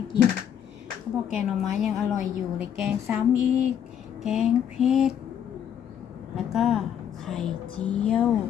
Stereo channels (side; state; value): right; quieter; 9.1 dB